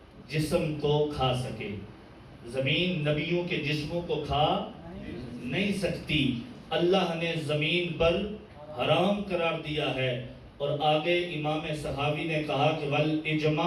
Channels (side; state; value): both; identical; correlation 1.00